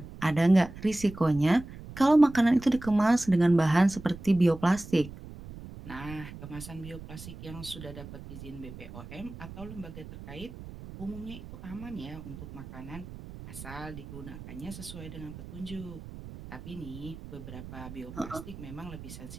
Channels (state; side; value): noise; right; rumble, 13 dB below the sound